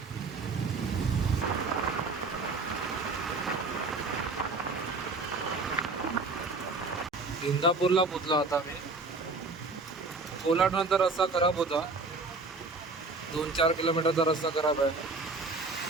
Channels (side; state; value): left; quieter; 3.6 dB